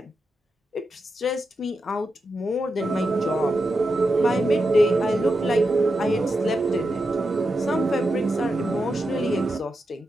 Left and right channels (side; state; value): both; normal; correlation 0.88